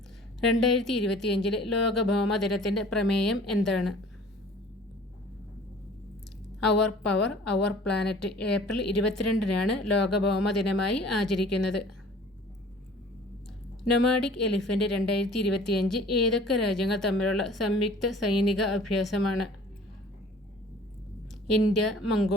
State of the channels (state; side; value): normal; both; correlation 0.49